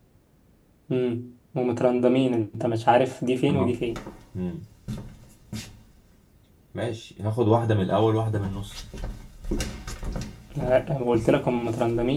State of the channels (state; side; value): identical; both; correlation 1.00